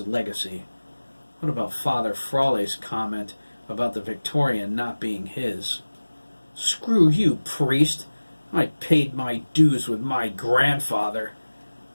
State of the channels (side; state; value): both; inverted; correlation -1.00